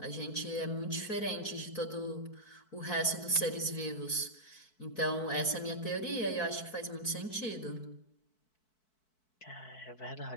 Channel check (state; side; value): late; right; 4.6 ms